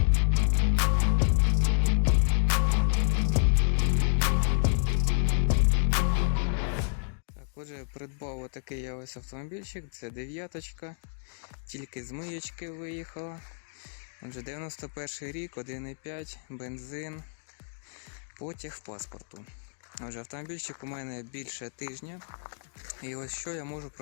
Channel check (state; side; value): silent; right; digital silence